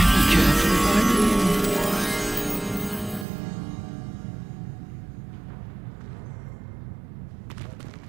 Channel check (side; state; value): left; drops out; at 3.2 s